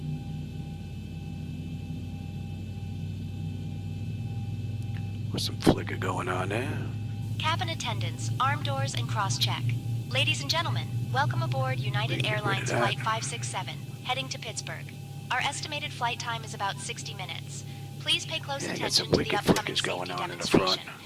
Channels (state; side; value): identical; both; correlation 1.00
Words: Some flicker going on there. Cabin attendants, arm doors, and cross-check. Ladies and gentlemen, welcome aboard United Airlines Flight 567, heading to Pittsburgh. Our estimated flight time is about 60 minutes. Please pay close attention to the upcoming safety demonstration,